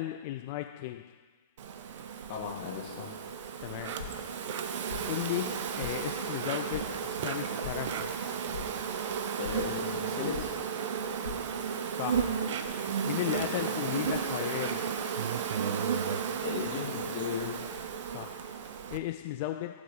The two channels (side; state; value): both; inverted; correlation -0.35